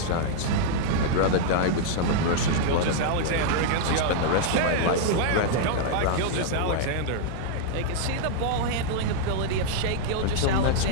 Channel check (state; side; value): different; both; correlation -0.01